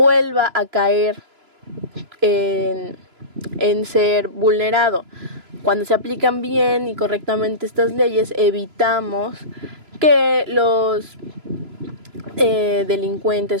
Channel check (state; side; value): late; left; 3.0 ms